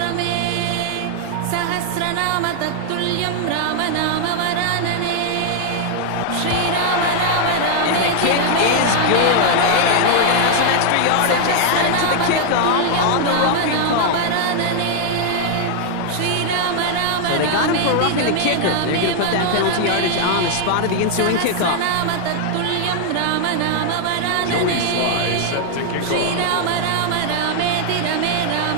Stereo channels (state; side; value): different; both; correlation 0.00